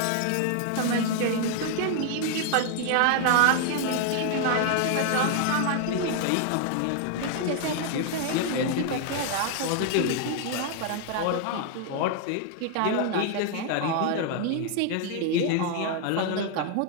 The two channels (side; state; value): both; different; correlation 0.00